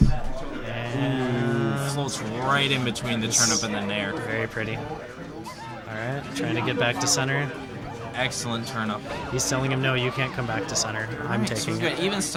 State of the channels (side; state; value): both; identical; correlation 1.00